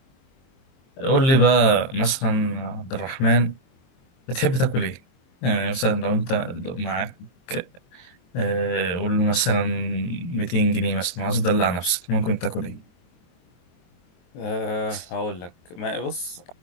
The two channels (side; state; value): right; late; 23 ms